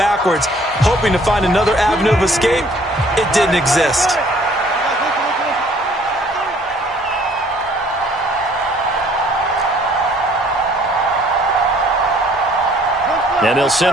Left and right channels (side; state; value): both; normal; correlation 0.58